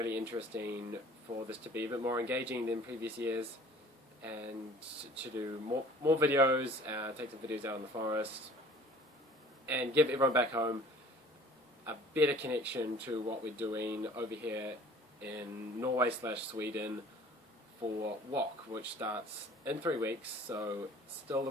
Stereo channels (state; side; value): normal; both; correlation 0.49